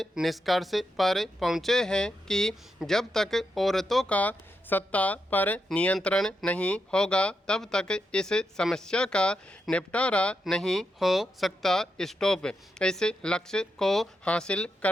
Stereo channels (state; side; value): normal; both; correlation 0.85